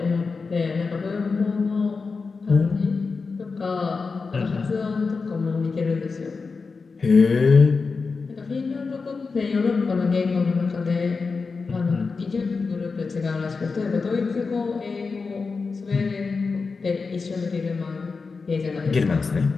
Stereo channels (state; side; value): quieter; right; 4.5 dB